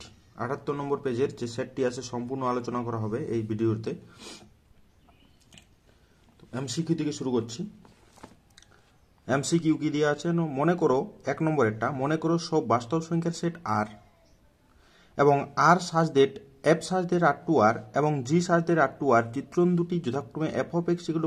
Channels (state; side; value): identical; both; correlation 1.00